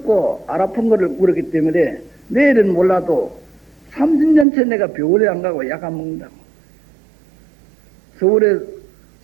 안 아픈 것을 물었기 때문에 내일은 몰라도 30년째 내가 병원에 안 가고 약 안 먹는다고. 서울에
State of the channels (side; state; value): left; drops out; at 4.5 s